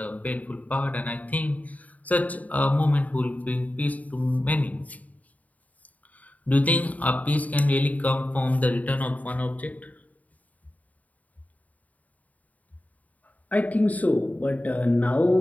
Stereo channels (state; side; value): late; right; 0.073 ms